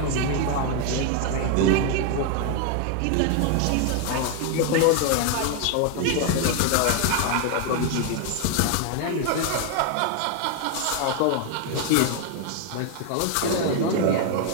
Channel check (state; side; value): different; both; correlation 0.00